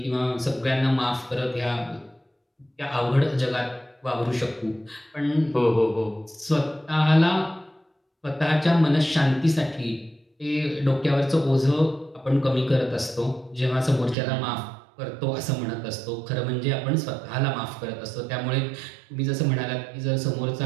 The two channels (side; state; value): left; drops out; at 14.2 s